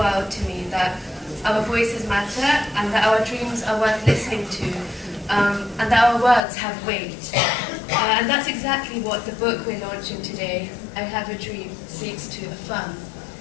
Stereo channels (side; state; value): right; drops out; at 6.4 s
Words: to me that our voices matter and that our dreams are worth listening to, and that our words have weight. And that's exactly what the book we're launching today, I Have a Dream, seeks to affirm.